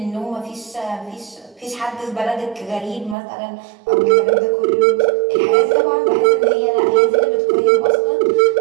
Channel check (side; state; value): left; drops out; at 3.2 s